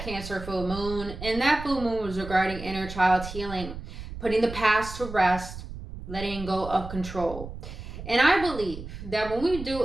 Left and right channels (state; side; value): noise; right; rumble, 11 dB below the sound